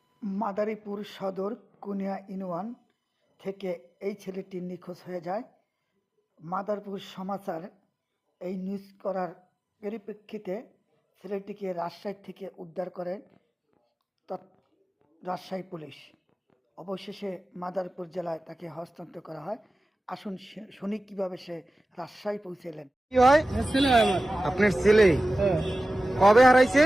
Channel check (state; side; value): normal; both; correlation 0.96